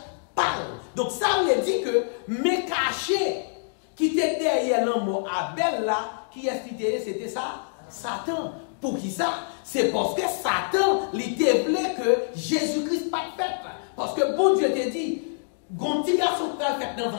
par. Donc ça veut dire que mes cachets qui étaient derrière la mort Abel là, qui est c'était ça? Satan. Pour qui ça? C'est parce que Satan, il te voulait que Jésus-Christ pas fait. Parce que bon Dieu te dit, quand petit garçon va faire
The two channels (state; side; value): silent; right; digital silence